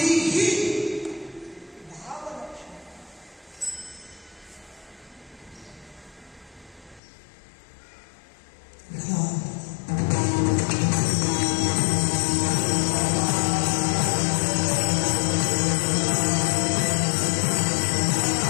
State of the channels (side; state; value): right; drops out; at 7.0 s